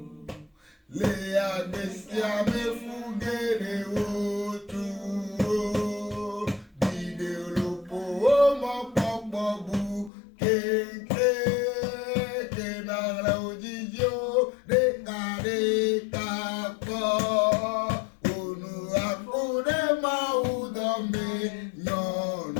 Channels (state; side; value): drops out; right; at 10.1 s